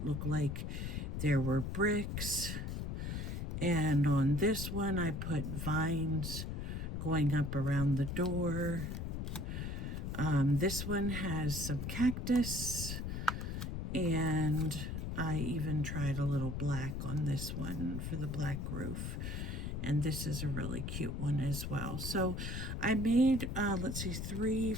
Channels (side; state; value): left; noise; rumble, 3 dB below the sound